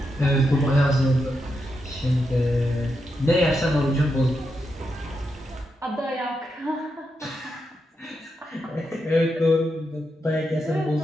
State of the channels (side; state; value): both; normal; correlation 0.84